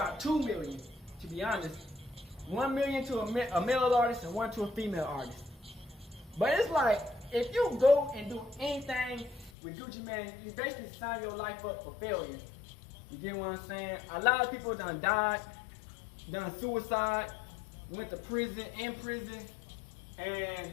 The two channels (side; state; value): right; drops out; at 9.5 s